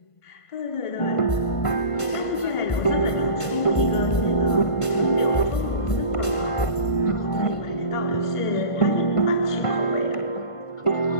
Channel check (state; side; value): late; right; 1.5 ms